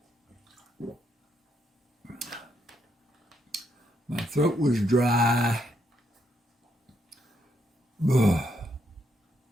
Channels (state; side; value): normal; both; correlation 0.77